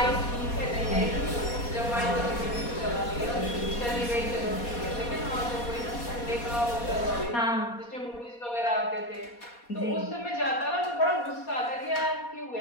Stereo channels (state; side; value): late; right; 4.2 ms